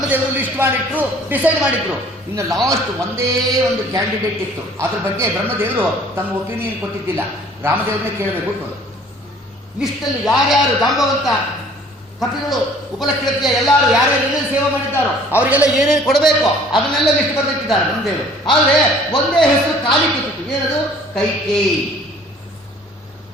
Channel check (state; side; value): normal; both; correlation 0.53